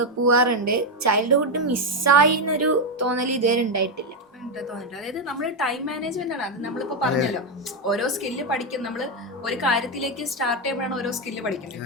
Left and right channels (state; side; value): normal; both; correlation 0.06